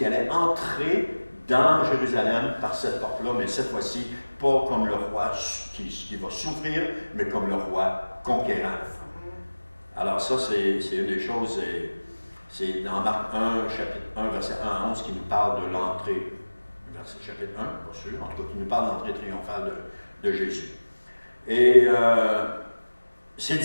allait entrer dans Jérusalem par cette porte-là, mais cette fois-ci, pas comme le roi qui va souffrir, mais comme le roi conquérant. Alors ça, c'est une des choses, c'est dans Marc 1, chapitre 1, verset 1 à 11, qui nous parle de l'entrée, chapitre 1, pas sûr, en tout cas, qui nous parle de l'entrée triomphale de Jésus. Et ses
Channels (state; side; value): inverted; both; correlation -1.00